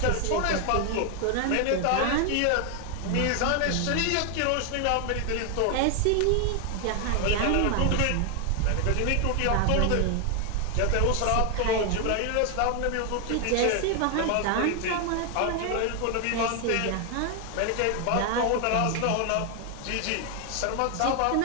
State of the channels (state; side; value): different; both; correlation 0.01